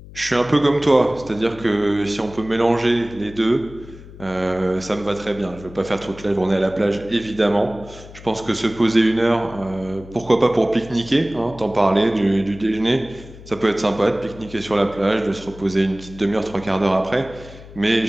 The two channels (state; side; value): noise; left; hum, 17 dB below the sound